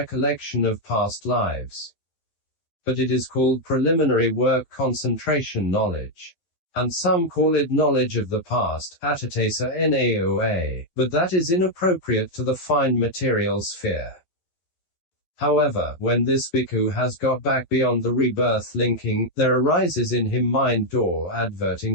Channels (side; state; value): right; late; 12 ms